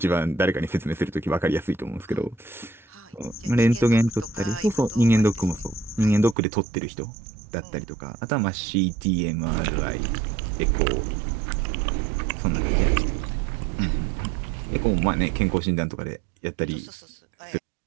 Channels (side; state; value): left; drops out; at 6.4 s